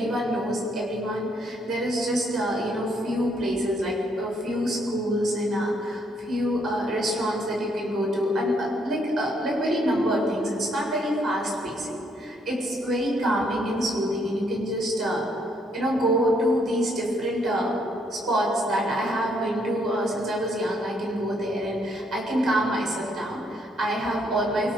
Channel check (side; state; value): both; normal; correlation 0.71